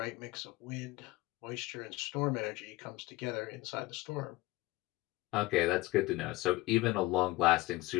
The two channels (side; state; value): right; quieter; 19.3 dB